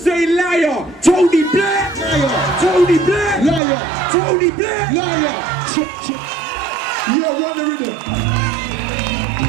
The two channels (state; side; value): drops out; left; at 3.6 s